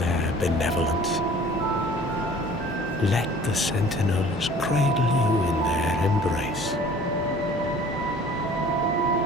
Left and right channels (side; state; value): both; normal; correlation 0.49